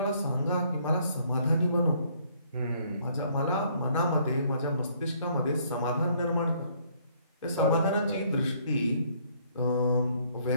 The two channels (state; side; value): inverted; both; correlation -0.64